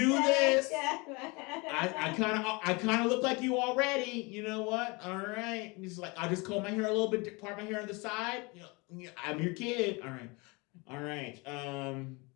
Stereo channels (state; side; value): quieter; right; 27.3 dB